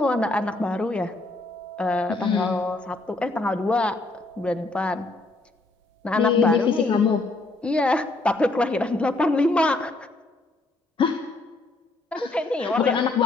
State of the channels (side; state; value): right; quieter; 3.1 dB